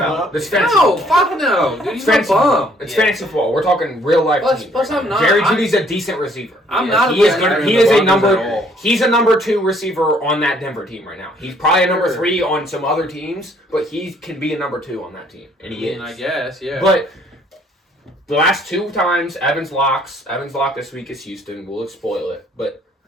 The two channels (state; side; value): normal; both; correlation 0.63